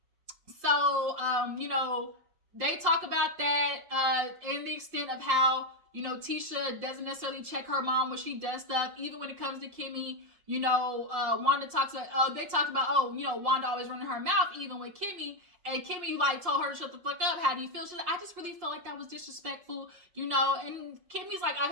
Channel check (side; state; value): left; late; 5.5 ms